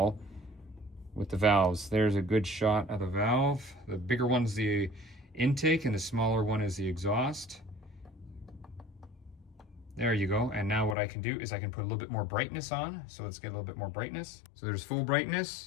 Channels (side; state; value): right; drops out; at 11.0 s